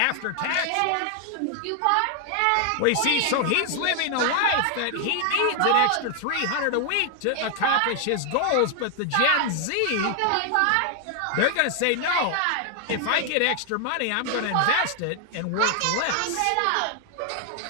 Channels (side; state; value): both; different; correlation 0.00